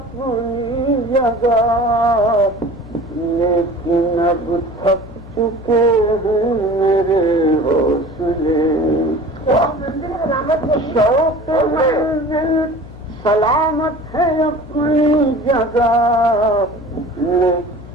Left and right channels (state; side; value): noise; left; hum, 17 dB below the sound